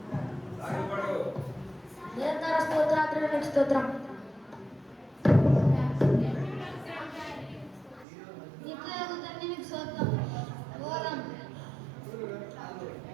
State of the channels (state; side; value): drops out; left; at 8.1 s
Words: నిరంతర స్తోత్రాత్రులు స్తోత్రం. నిత్యయోగ తండ్రి మీకు స్తోత్రం. ఓరం